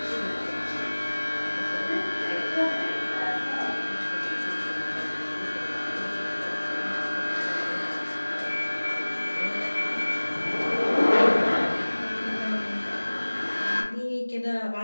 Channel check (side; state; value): both; inverted; correlation -1.00